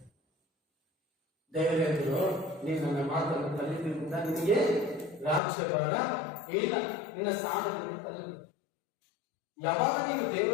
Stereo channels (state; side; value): drops out; right; at 5.4 s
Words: ದೇವರು ಹೇಳಿದ್ರು ನೀನು ನನ್ನ ಮಾತನ್ನು ಕಲಿತಿರುವುದ ನಿನಗೆ ರಾಜ್ಯಭಾಗ ಇಲ್ಲ, ನಿನ್ನ ಸ್ಥಾನದಲ್ಲಿ ತಲ್ಲಿ. ಯಾವಾಗ ನೀವು